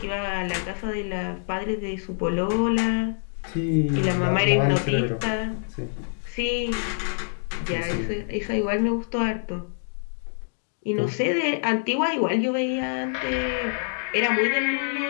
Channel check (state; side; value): silent; right; digital silence